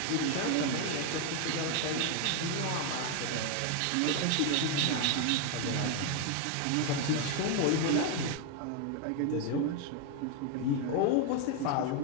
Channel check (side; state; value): both; different; correlation 0.01